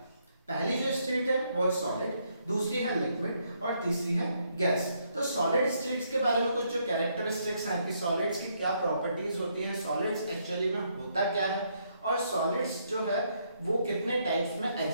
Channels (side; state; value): both; inverted; correlation -0.74